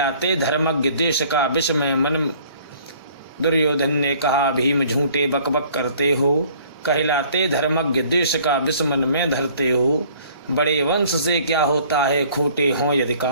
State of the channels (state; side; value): inverted; both; correlation -0.55